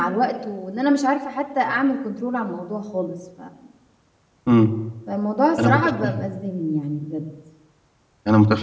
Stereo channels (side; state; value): both; identical; correlation 1.00